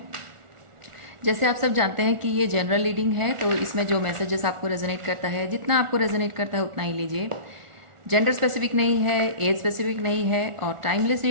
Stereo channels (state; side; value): late; left; 1.4 ms